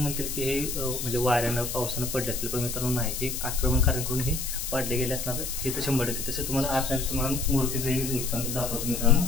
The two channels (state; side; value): noise; left; hiss, 5 dB below the sound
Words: की हे म्हणजे वाऱ्यानं पावसानं पडले असतील, पण मित्रांनो नाही, हे आक्रमणकाऱ्यांकडून हे पाडले गेले असणार हे तर 100%. तसं तुम्हाला आतमध्ये तुम्हाला मूर्तीचं दाखवतो मित्रांनो.